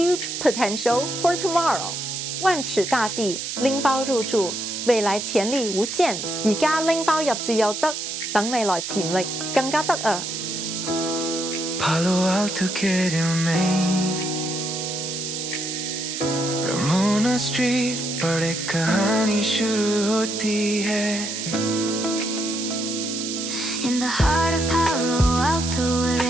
potential for tomorrow. 萬尺大地，拎包入住，未來潛力無限。而家拎包入住又得，等未來潛力更加得啊！ Palo Alto querido Maine Ramona Street बड़े कहानी शुरू होती है In the heart of Palo Alto, where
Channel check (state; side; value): noise; right; hiss, 5 dB below the sound